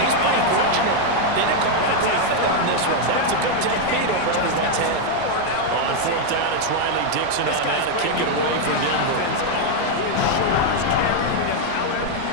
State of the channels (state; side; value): different; both; correlation 0.01